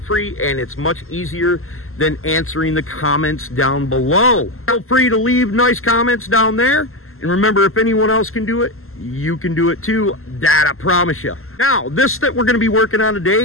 and it's much easier than answering the comments down below. Feel free to leave nice comments down there. And remember, if anyone else can do it, you can do it too. That I promise you. Now, this that we're going to be working on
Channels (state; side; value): late; right; 0.62 ms